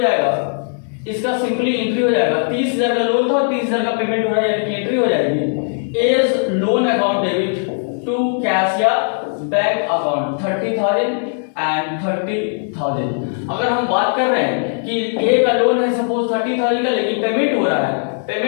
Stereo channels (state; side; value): silent; right; 67 dB below the other